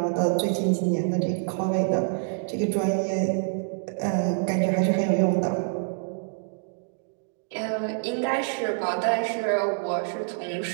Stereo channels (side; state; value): left; silent; digital silence